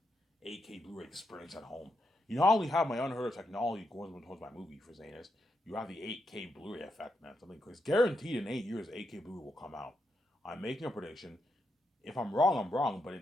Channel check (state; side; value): normal; both; correlation 0.82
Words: 8K Blu-ray experience at home. You not only have my unheard of technology going towards my movie for saying this, you have the 8K Blu-ray effect, man. Something crazy. Guaranteed in 8 years, 8K Blu-ray will come out. I'm making a prediction. If I'm wrong, I'm wrong. But